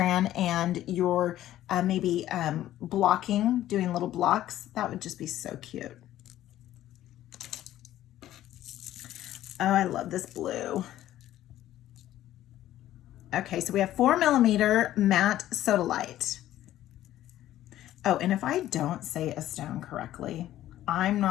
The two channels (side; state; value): right; quieter; 13.4 dB